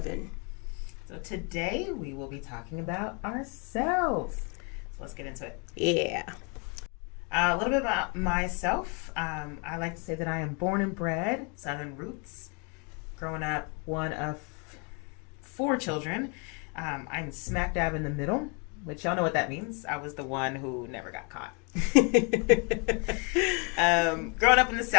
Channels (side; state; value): right; quieter; 34.3 dB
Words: in. So today, we will be talking about ourselves. So let's get into it. Yeah. A little bit about myself. I like to say that I am born and bred, Southern roots. Growing up, one of 4 children. I'm smack dab in the middle, which y'all know what that means. I was the one who never got caught. Growing up in the